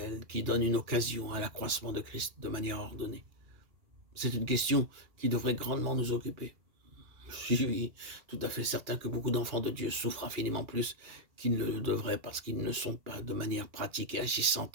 qui donne une occasion à l'accroissement de Christ de manière ordonnée. C'est une question qui devrait grandement nous occuper. Je suis tout à fait certain que beaucoup d'enfants de Dieu souffrent infiniment plus qu'ils ne le devraient parce qu'ils ne sont pas de manière pratique et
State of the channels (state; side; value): late; left; 2.9 ms